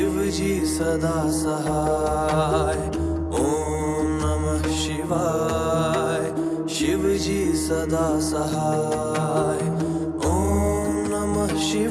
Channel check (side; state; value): both; identical; correlation 1.00